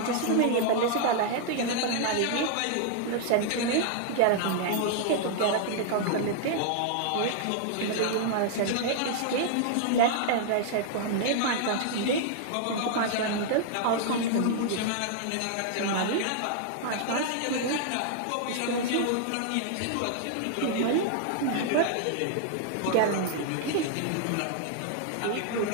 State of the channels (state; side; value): different; both; correlation 0.00